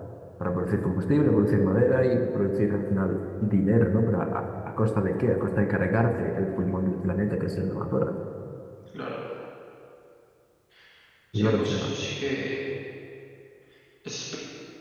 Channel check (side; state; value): both; identical; correlation 1.00